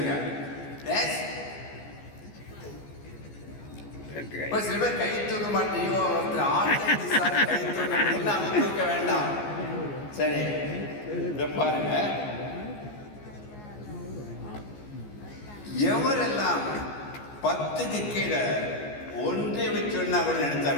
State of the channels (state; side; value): late; right; 14 ms